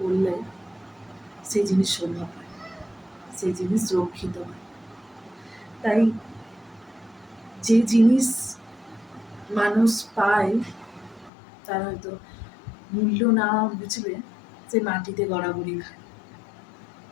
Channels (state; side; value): drops out; right; at 11.3 s